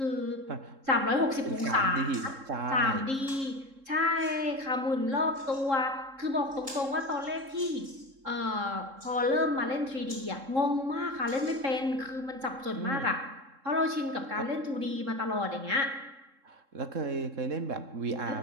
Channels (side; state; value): left; late; 3.7 ms